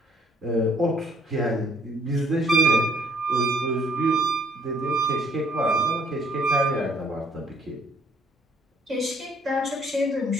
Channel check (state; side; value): normal; both; correlation 0.63